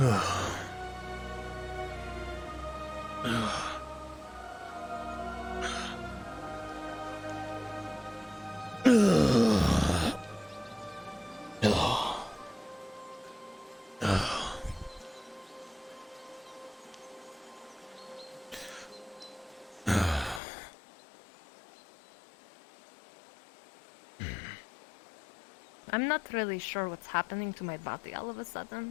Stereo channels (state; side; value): drops out; right; at 20.4 s